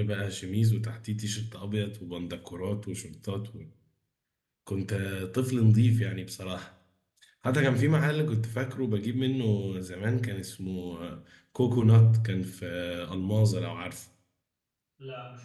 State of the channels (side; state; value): both; identical; correlation 1.00